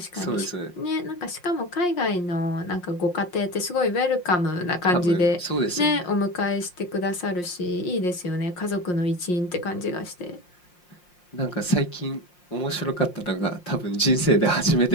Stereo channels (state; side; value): late; right; 5.6 ms